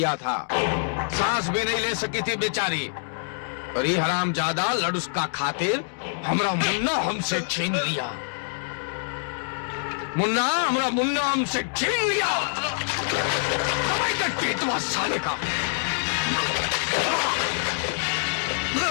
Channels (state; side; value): silent; right; digital silence